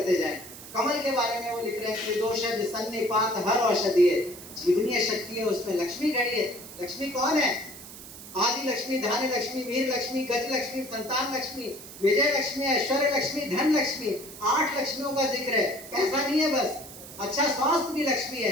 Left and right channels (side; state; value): right; noise; hiss, 15 dB below the sound